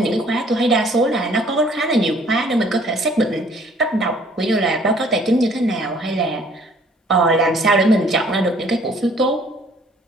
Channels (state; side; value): normal; both; correlation 0.59